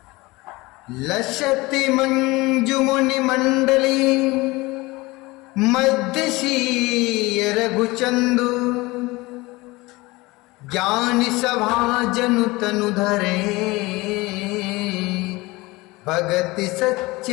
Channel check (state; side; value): quieter; right; 22.0 dB